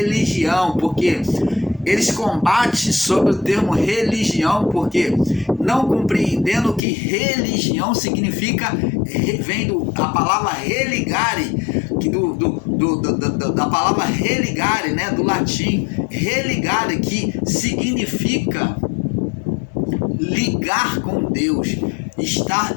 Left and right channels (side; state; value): right; drops out; at 6.8 s